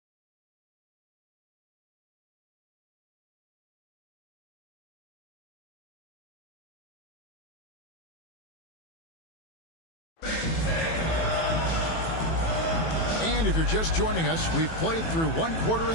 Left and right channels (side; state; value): right; late; 18 ms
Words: And if you're just joining us, we've played through 1 quarter